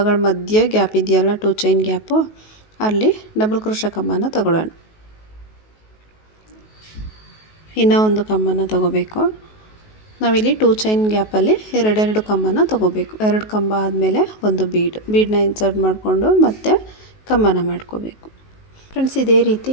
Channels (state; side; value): late; right; 19 ms